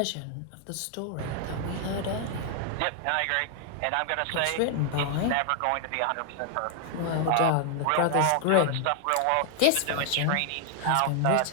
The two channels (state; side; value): different; both; correlation 0.00